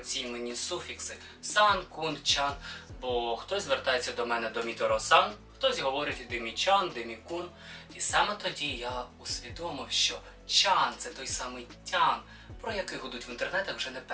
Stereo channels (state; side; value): identical; both; correlation 1.00